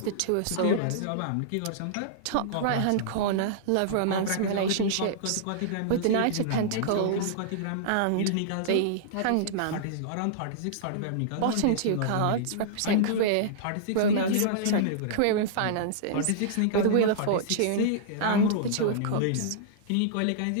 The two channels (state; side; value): different; both; correlation -0.02